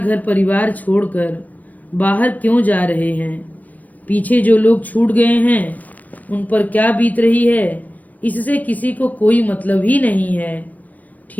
परिवार छोड़कर बाहर क्यों जा रहे हैं। पीछे जो लोग छूट गए हैं उन पर क्या बीत रही है, इससे किसी को कोई मतलब ही नहीं है।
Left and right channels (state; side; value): late; right; 0.079 ms